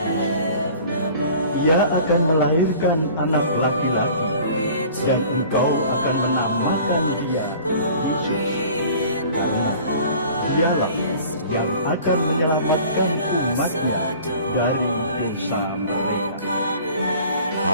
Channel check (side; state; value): both; inverted; correlation -0.47